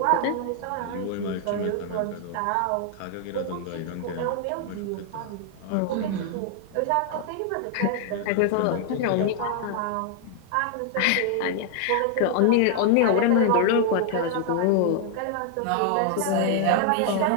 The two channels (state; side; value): different; both; correlation 0.00